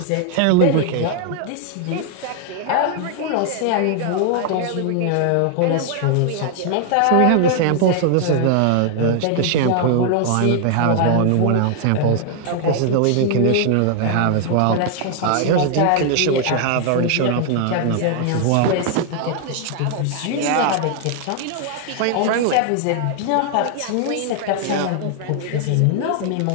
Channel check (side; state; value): both; different; correlation 0.00